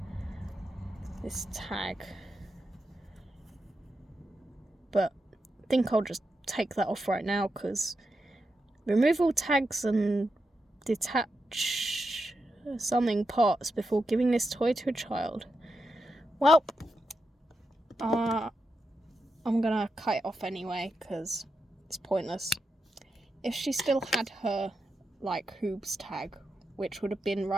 tag, but I think I'll just take that off right now because remove all tags and detach something parts before giving this toy to a child. Well, I'm gonna cut it off anyway because it's pointless. If she still had her like Hoobs tag, which would have been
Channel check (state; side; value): normal; both; correlation 0.87